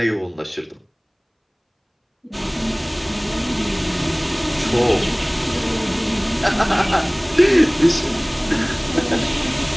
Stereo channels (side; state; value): both; identical; correlation 1.00